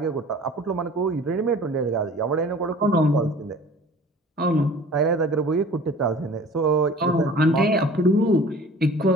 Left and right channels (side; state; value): both; normal; correlation 0.45